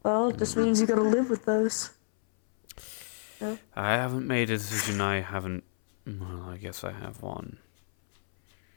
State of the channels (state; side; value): silent; right; 58 dB below the other